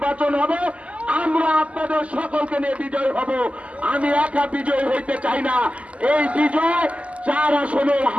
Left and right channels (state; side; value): late; left; 0.064 ms